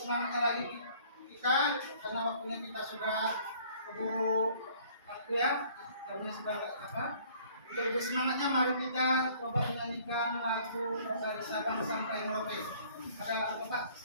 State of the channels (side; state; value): both; inverted; correlation -0.56